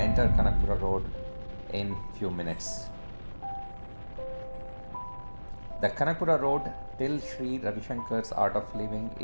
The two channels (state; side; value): inverted; both; correlation -1.00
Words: Kanakpura Road in few minutes. The Kanakpura Road till Sri Ravi Shankar's Art of Living